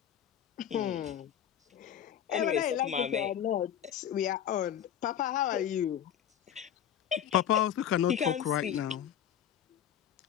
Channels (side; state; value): right; quieter; 9.8 dB